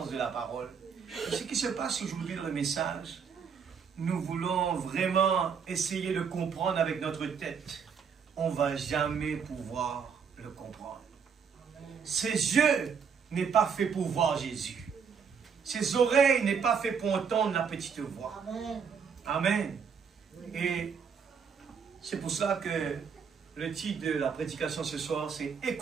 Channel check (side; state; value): left; quieter; 6.4 dB